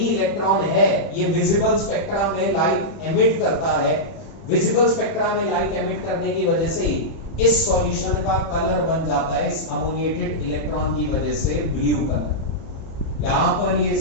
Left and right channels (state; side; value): late; right; 30 ms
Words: है ये विजिबल स्पेक्ट्रा में लाइट एमिट करता है। विजिबल स्पेक्ट्रा में लाइट एमिट करने की वजह से इस सॉल्यूशन का कलर बन जाता है, इस अमोनिएटेड इलेक्ट्रॉन की वजह से ब्लू कलर। यहां पर ये